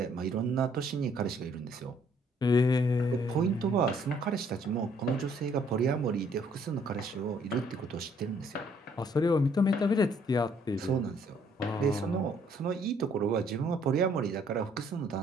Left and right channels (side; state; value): both; normal; correlation 0.64